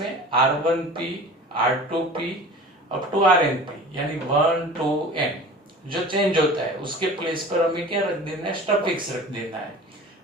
R1P, R2P up to RnP, यानी 1 to n जो चेंज होता है उसके प्लेस पर हमें क्या रख देना है, स्टफिक्स रख देना है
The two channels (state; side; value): normal; both; correlation 0.39